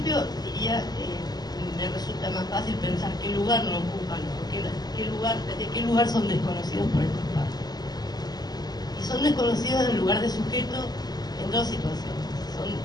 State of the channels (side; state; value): right; late; 0.20 ms